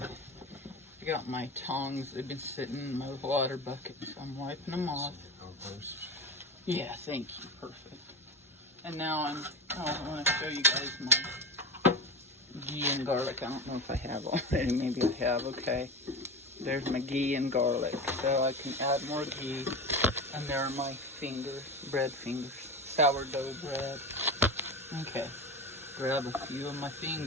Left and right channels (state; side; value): normal; both; correlation 0.24